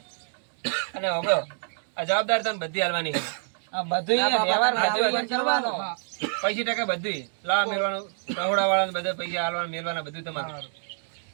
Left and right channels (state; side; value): silent; left; 60 dB below the other